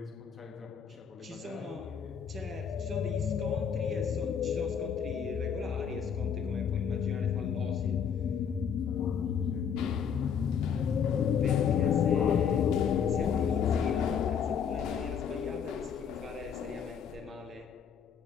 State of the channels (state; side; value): quieter; right; 7.3 dB